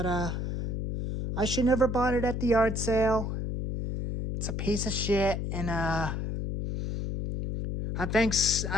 I should never bought it at the yard sale. It's a piece of shit, and I think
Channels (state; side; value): noise; left; hum, 3 dB below the sound